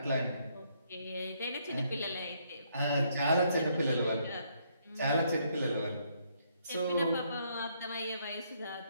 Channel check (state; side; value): inverted; both; correlation -0.71